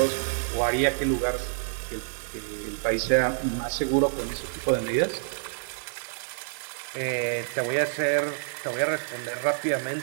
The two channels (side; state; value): left; silent; digital silence